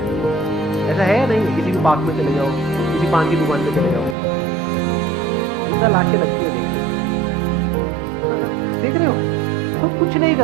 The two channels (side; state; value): left; drops out; at 4.2 s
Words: ऐसा है या नहीं? किसी भी पार्क में चले जाओ, किसी पान की दुकान पे चले जाओ, जितना लाशें लगती है देख रहे हो, खुद कुछ नहीं